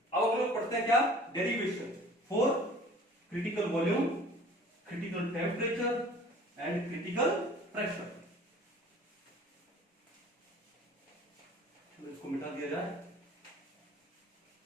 अब हम लोग पढ़ते हैं क्या, derivation for critical volume, critical temperature and critical pressure. चलो इसको मिटा दिया जाए।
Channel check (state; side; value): normal; both; correlation 0.48